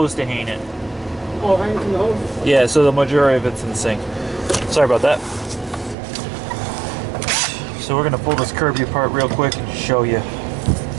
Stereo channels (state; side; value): drops out; left; at 6.0 s